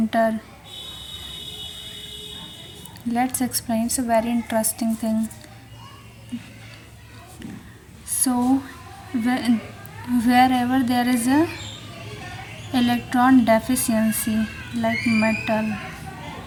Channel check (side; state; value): both; identical; correlation 1.00